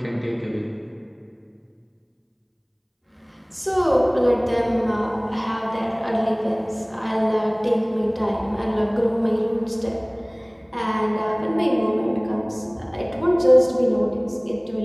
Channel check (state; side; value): identical; both; correlation 1.00